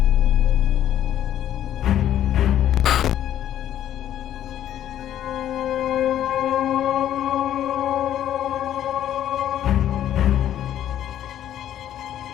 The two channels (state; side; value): quieter; right; 11.2 dB